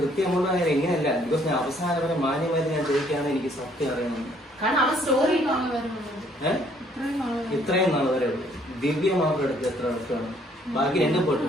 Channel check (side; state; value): both; normal; correlation 0.64